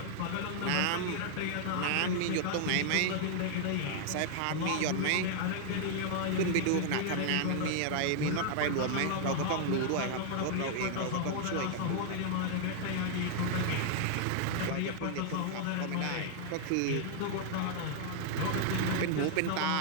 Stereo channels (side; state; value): both; different; correlation 0.00